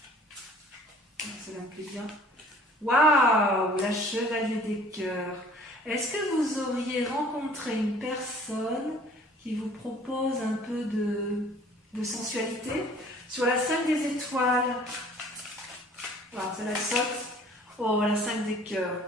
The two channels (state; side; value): normal; both; correlation 0.52